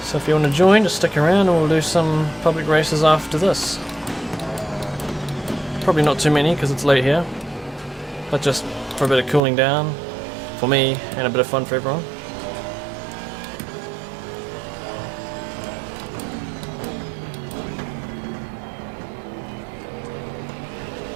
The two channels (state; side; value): drops out; left; at 9.4 s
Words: So if you want to join, just stick around and we'll do some public races after this. Probably not too many because it's late here, but just for a bit of cooling down for me and a bit of fun for everyone.